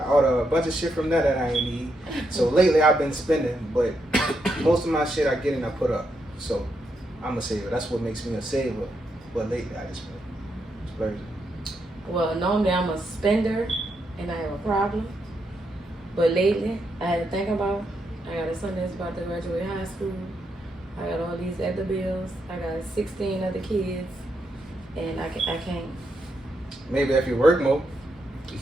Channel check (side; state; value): both; normal; correlation 0.81